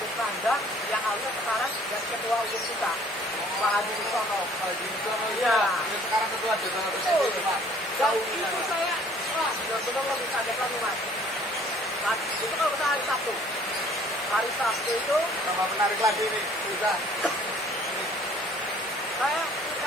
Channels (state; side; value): normal; both; correlation 0.55